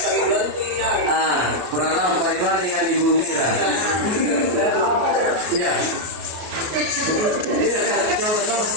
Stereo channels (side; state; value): left; late; 33 ms